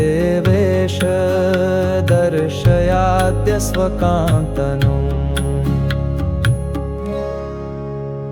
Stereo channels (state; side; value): identical; both; correlation 1.00